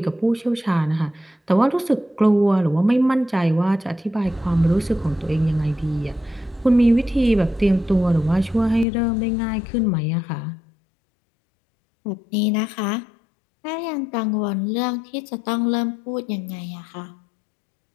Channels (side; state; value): right; drops out; at 8.8 s